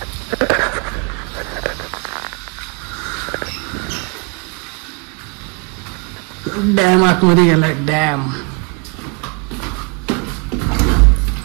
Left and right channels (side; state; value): left; quieter; 30.8 dB